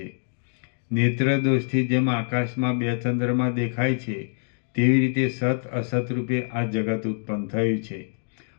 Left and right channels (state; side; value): silent; right; digital silence